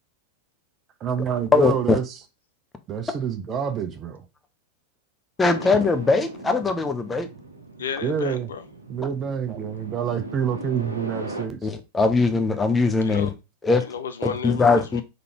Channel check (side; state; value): both; normal; correlation 0.63